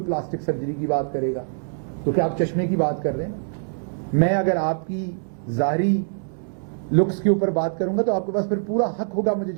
پلاسٹک سرجری کی بات کرے گا، تو کیا آپ چشمے کی بات کر رہے ہیں؟ میں اگر آپ کی ظاہری لکس کے اوپر بات کروں گا تو آپ کے پاس پھر پورا حق ہوگا مجھے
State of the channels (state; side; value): silent; left; digital silence